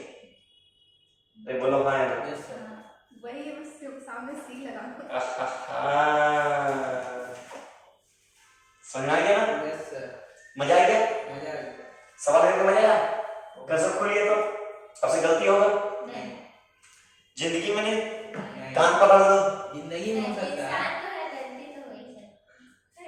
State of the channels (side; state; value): both; identical; correlation 1.00